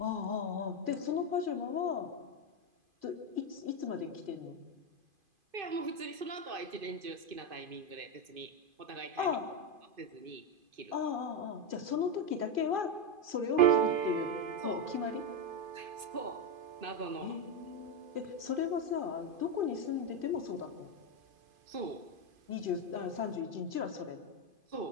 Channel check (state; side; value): late; left; 2.5 ms